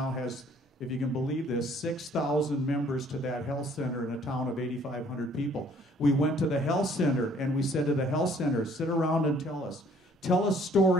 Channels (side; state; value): both; normal; correlation 0.59